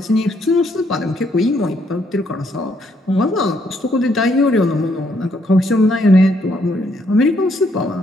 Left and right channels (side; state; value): both; normal; correlation 0.72